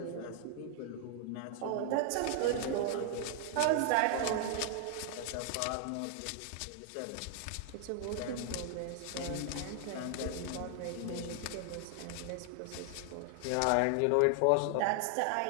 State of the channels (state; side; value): different; both; correlation 0.00